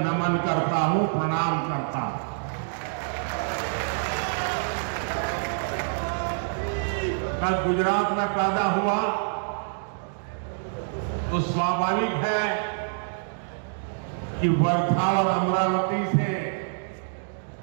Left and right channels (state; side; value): silent; left; digital silence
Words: करता हूं, प्रणाम करता हूं। मैं गुजरात में पैदा हुआ तो स्वाभाविक है कि वर्धा और अमरावती से